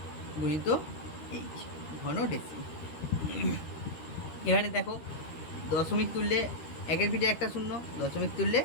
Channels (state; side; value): late; right; 13 ms